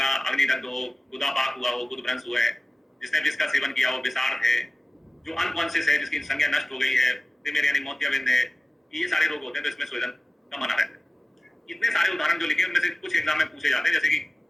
अग्निदग्ध हो, गुदापाक हुआ हो, गुदभ्रंश हुआ है, जिसने विष का सेवन किया हो, विषार्थ है, जो अनकॉन्शियस है, जिसकी संज्ञा नष्ट हो गई है, तिमिर यानी मोतियाबिंद है, ये सारे रोग होते हैं तो इसमें स्वेदन का मना रहता है। इतने सारे उदाहरण जो लिखे उनमें से कुछ एग्जाम में पूछे जाते हैं, जैसे कि,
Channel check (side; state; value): both; normal; correlation 0.96